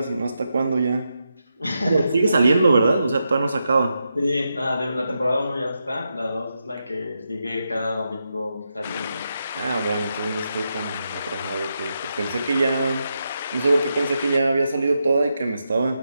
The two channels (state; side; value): inverted; both; correlation -0.85